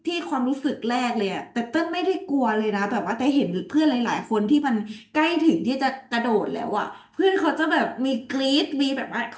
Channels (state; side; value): identical; both; correlation 1.00